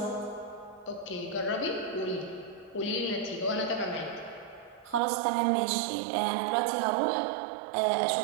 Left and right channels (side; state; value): left; drops out; at 5.0 s